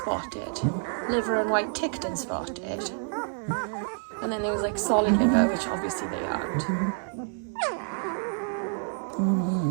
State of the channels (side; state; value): left; silent; 59 dB below the other